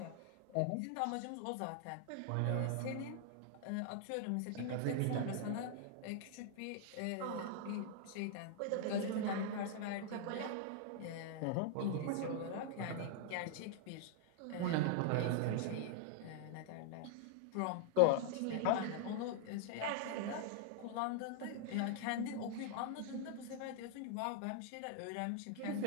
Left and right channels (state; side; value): different; both; correlation -0.01